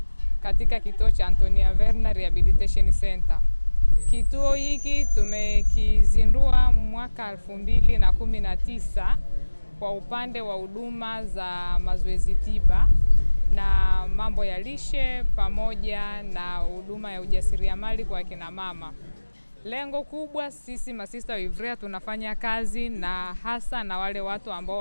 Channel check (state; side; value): inverted; both; correlation -1.00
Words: katika kituo cha Antonia Verna Rehabilitation Center. Kituo hiki tumekizindua mwaka 2019 kwa upande wa huduma za mazoezi tiba na mambo ya lishe pamoja na huduma ya ujasiriamali kwa kina mama. Lengo kubwa, sisi masista wa Ivrea tunafanya kazi na hasa na wale watu ambao